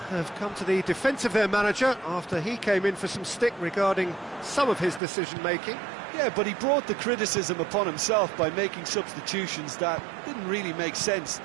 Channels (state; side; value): drops out; left; at 5.0 s